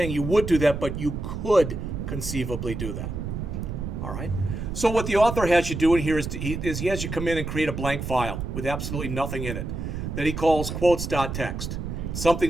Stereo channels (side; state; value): right; noise; rumble, 5 dB below the sound